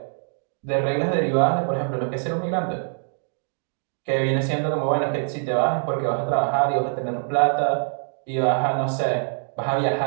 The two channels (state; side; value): silent; left; digital silence